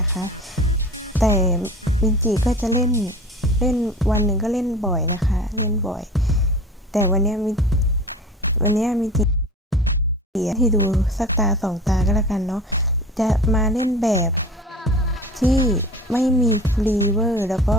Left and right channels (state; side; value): normal; both; correlation 0.39